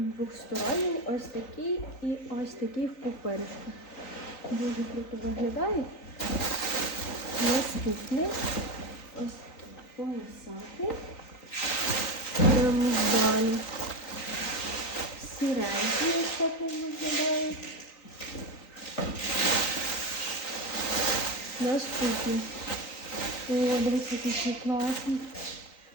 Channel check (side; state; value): right; late; 3.9 ms